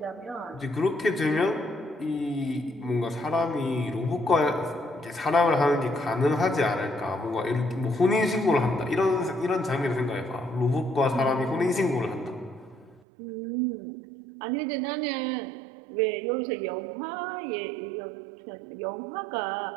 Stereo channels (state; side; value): drops out; left; at 13.0 s